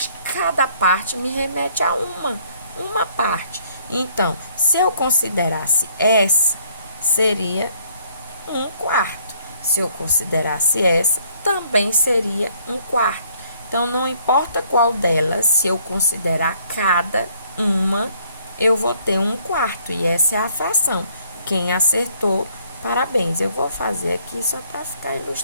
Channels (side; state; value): both; inverted; correlation -0.64